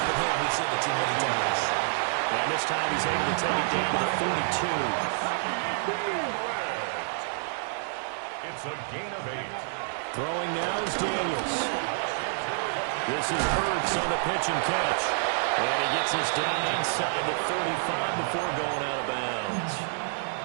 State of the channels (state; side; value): silent; left; digital silence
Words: him. We've seen it too many times. And this time he's able to take it down to the 42. It's a gain of 8. Throwing now is Daniels. This is Ertz on the pitch and catch. And he gets us down inside the 35 before going out of bounds.